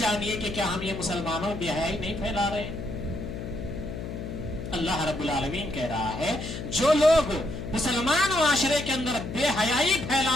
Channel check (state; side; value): noise; left; hum, 7 dB below the sound